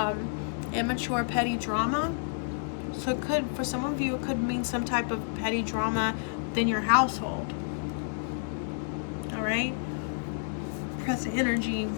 immature petty drama. So it could, for some of you, it could mean some type of petty drama within your household. All right, present energy,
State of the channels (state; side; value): silent; right; 58 dB below the other